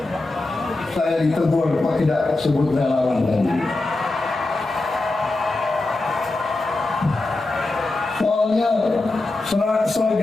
saya ditegur kok tidak sebut relawan tadi. Soalnya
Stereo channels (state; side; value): quieter; right; 3.0 dB